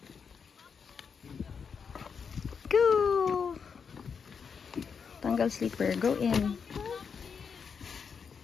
Go. Tanggal slipper. Go in.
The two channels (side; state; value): right; quieter; 6.2 dB